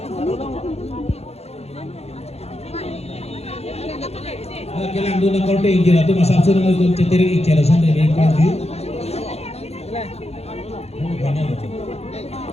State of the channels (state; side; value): late; right; 0.30 ms